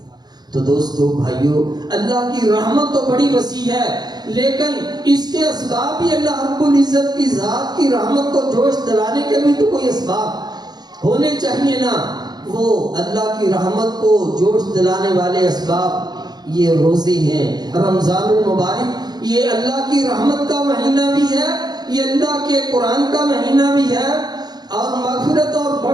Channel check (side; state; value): left; late; 0.20 ms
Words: تو دوستو بھائیو، اللہ کی رحمت تو بڑی وسیع ہے، لیکن اس کے اسباب بھی اللہ رب العزت کی ذات کی رحمت کو جوش دلانے کے بھی تو کوئی اسباب ہونے چاہیے نا۔ وہ اللہ کی رحمت کو جوش دلانے والے اسباب یہ روزے ہیں، رمضان المبارک یہ اللہ کی رحمت کا مہینہ بھی ہے، یہ اللہ کے قرآن کا مہینہ بھی ہے اور مغفرت اور